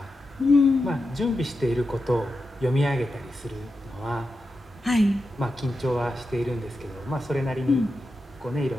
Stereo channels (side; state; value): both; normal; correlation 0.89